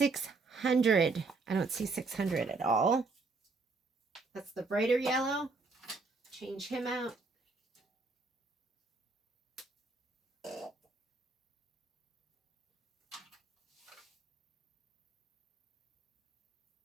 I don't see $600 at all. That's the brighter yellow. Change him out.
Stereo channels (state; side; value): quieter; left; 3.9 dB